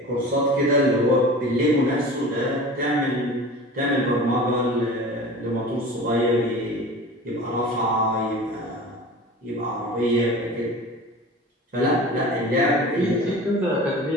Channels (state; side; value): normal; both; correlation 0.37